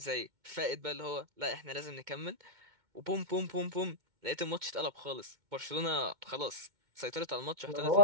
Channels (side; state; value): left; late; 2.1 ms